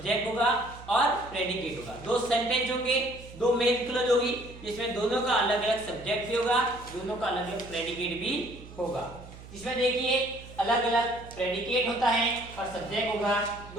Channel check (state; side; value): noise; right; hum, 17 dB below the sound